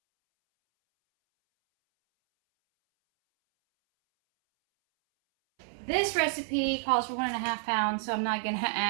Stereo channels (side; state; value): left; silent; 58 dB below the other